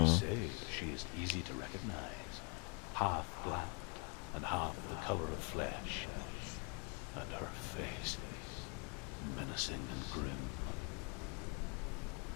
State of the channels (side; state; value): right; quieter; 32.7 dB